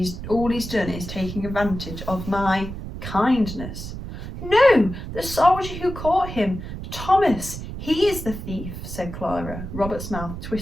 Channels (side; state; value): right; noise; rumble, 8 dB below the sound